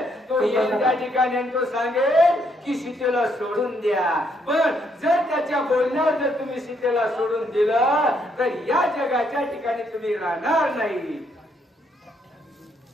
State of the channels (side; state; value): both; normal; correlation 0.73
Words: तो येईल त्या ठिकाणी आणि तो सांगेल की सीतेला सोडून द्या. पण जर त्याच्या बोलण्यावर जर तुम्ही सीतेला सोडून दिलं तर या जगाच्या ठिकाणी तुम्ही राहणार नाही.